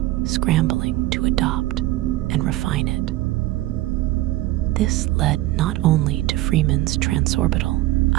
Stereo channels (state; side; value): quieter; left; 17.1 dB